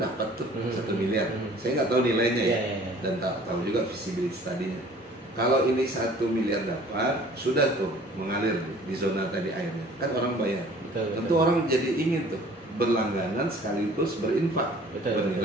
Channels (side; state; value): both; normal; correlation 0.51